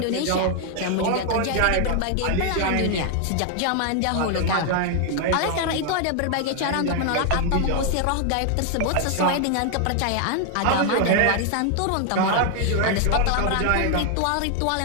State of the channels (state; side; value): different; both; correlation 0.00